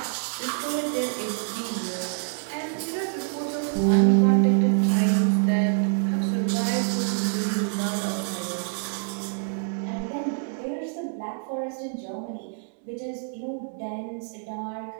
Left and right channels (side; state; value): left; silent; 61 dB below the other